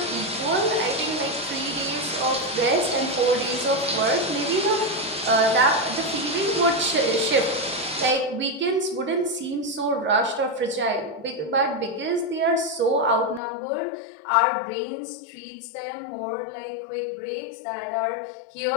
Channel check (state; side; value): drops out; right; at 13.4 s